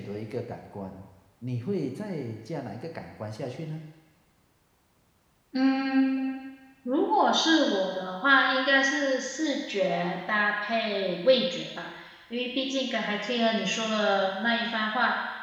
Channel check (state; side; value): identical; both; correlation 1.00